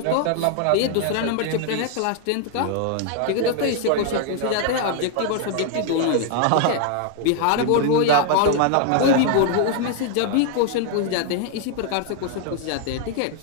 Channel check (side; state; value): both; different; correlation 0.00